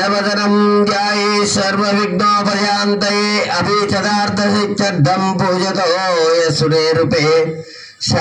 ध्याये सर्वविघ्नोपशान्तये अभीष्टदार्थसिद्ध्यर्थं पूजतो यस्सूर्यरूपे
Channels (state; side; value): identical; both; correlation 1.00